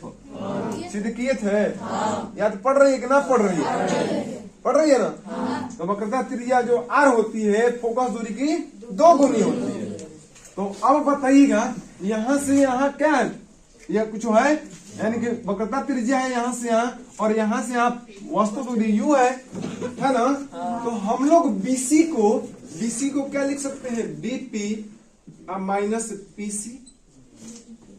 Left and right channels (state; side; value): identical; both; correlation 1.00